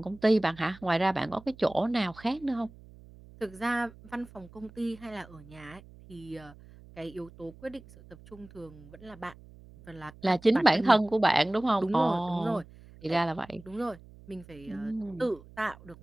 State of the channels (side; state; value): right; noise; hum, 21 dB below the sound